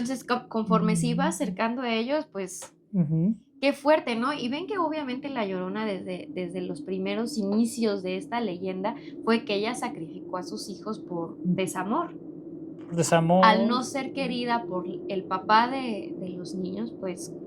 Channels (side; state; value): both; identical; correlation 1.00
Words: conforme se iba Mm, acercando a ellos, pues ujú, qué fuerte, ¿no? Y ven que obviamente la Llorona desde los primeros inicios de esta leyenda fue que ella sacrificó a sus hijos por desamor. Al desamor. no ser querida por el papá de los niños, pues